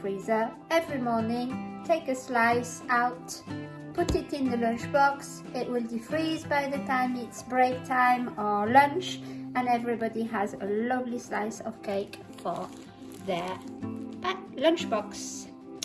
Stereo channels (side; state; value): both; identical; correlation 1.00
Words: Every morning, take a slice out, put it in the lunchbox. It will defreeze by the time it's break time or lunch, and everybody has a lovely slice of cake for their lunchbox.